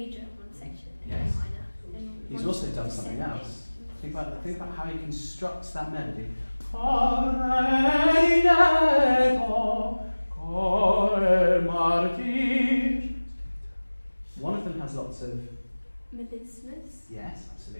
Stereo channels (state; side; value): inverted; both; correlation -1.00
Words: in one section and Yes. minor in He's one also done something descending. else. Think about how he constructs that melody. Cor è diretto, cor è martir. One of them has lots of Melismas. yes,